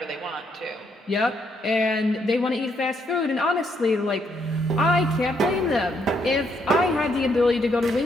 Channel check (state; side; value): normal; both; correlation 0.74